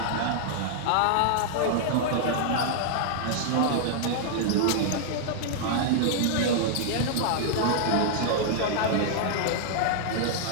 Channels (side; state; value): both; different; correlation -0.01